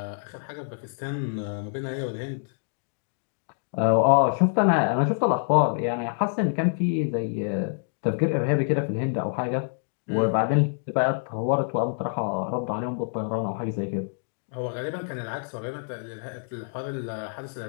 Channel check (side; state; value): right; silent; digital silence